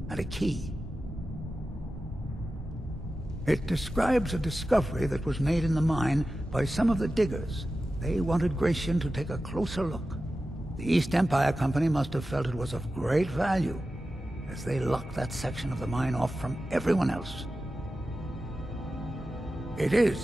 and a key. It describes a discovery that was made in the mine by some of the diggers. They wanted Gratian to take a closer look. The East Empire Company must have felt it was of great value, as they locked that section of the mine off from everyone else. It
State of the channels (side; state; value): both; normal; correlation 0.93